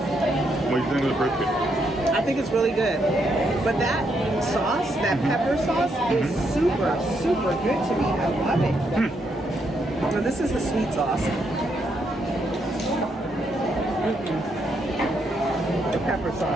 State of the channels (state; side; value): normal; both; correlation 0.77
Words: What do you think of the brisket? I think it's really good. But that sauce, that pepper sauce, is super, super good to me. I love it. Now this is the sweet sauce. The pepper